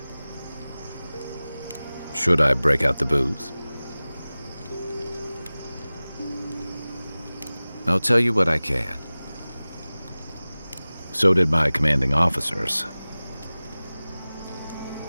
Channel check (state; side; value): inverted; both; correlation -0.98